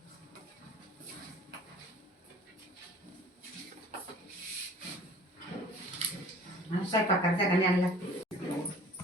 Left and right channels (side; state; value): both; normal; correlation 0.48